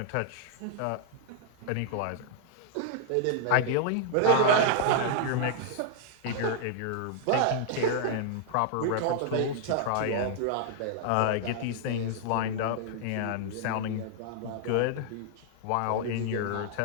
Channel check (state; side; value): different; both; correlation -0.01